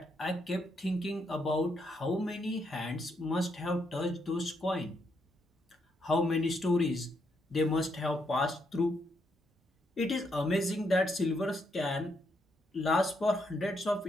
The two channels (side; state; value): both; normal; correlation 0.77